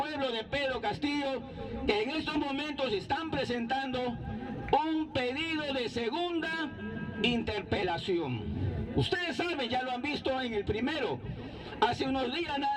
de Pedro Castillo, que en estos momentos están presentando un pedido de segunda interpelación. Ustedes saben, ya lo han visto en el primero. Hace unos días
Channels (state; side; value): identical; both; correlation 1.00